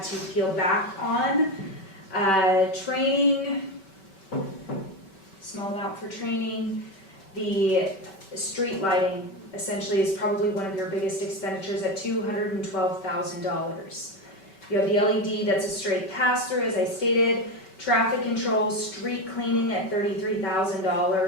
to peel back on, training, small amount for training. The street lighting essentially is probably one of your biggest expenditures at $212,000. You have the LED, that's a straight pass-through, as I stated, traffic control, street cleaning at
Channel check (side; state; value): right; late; 5.2 ms